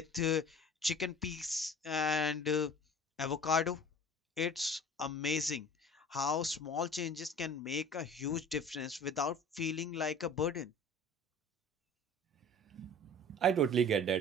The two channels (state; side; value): normal; both; correlation 0.43